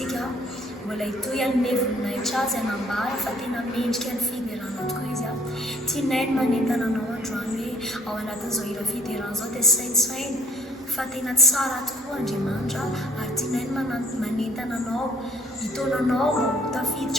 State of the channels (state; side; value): normal; both; correlation 0.60